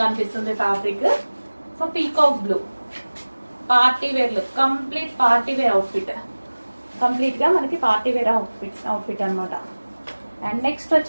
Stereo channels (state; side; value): inverted; both; correlation -1.00